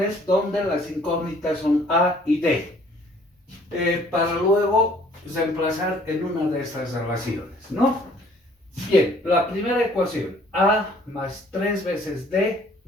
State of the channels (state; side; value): normal; both; correlation 0.58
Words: donde las incógnitas son A y D. Para luego reemplazar en una de estas relaciones, ¿no? Bien, la primera ecuación, A más 3 veces D